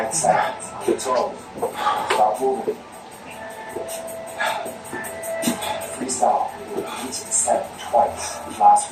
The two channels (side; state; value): both; identical; correlation 1.00